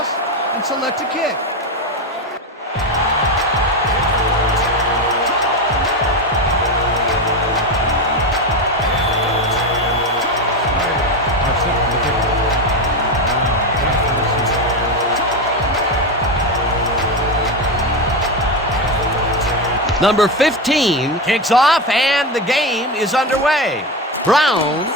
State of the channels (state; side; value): normal; both; correlation 0.16